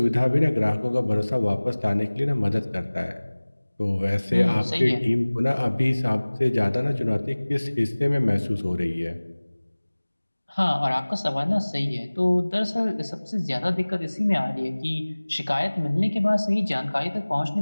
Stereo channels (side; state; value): both; inverted; correlation -1.00